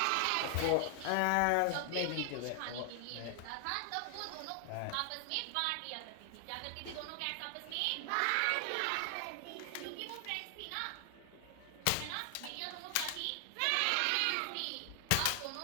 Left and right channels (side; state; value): both; different; correlation 0.00